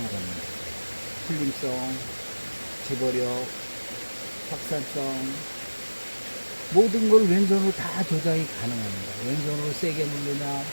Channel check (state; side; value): inverted; both; correlation -1.00